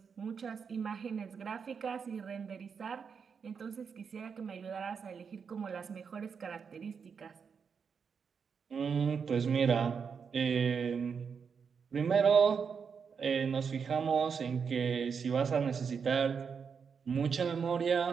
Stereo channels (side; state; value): left; quieter; 6.2 dB